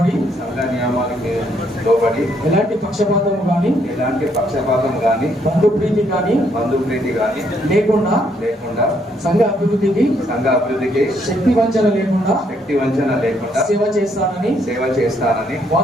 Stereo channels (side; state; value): both; normal; correlation 0.71